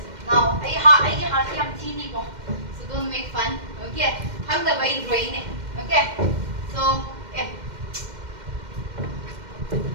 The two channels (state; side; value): late; left; 2.1 ms